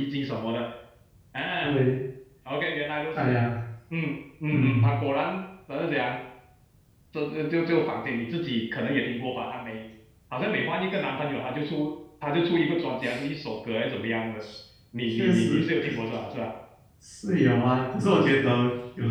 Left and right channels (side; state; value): both; identical; correlation 1.00